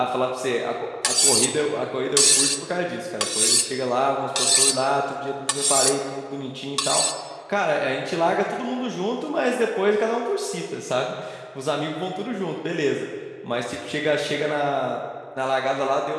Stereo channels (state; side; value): identical; both; correlation 1.00